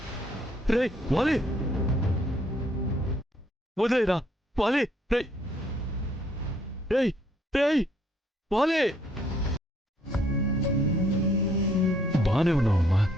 రే వాలి, వదిలేరా వాలి. రే రే రే వాలి, బానే ఉన్నావమ్మా?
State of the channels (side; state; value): both; normal; correlation 0.67